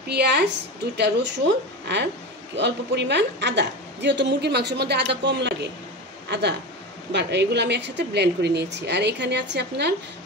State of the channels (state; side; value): normal; both; correlation 0.25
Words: পেঁয়াজ, 2টা রসুন আর অল্প পরিমাণ আদা। যেহেতু মুরগির মাংসের মধ্যে আদা কম লাগে, আদা এগুলো আমি একসাথে ব্লেন্ড করে নিয়েছি। আর এখানে আছে আপনার